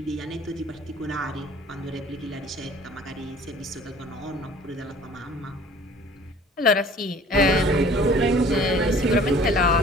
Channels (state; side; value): normal; both; correlation 0.50